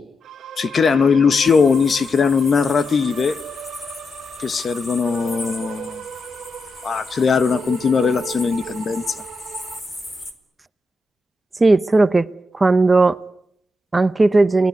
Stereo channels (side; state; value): both; normal; correlation 0.86